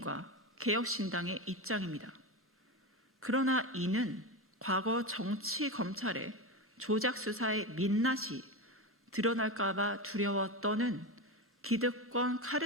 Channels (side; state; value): both; normal; correlation 0.18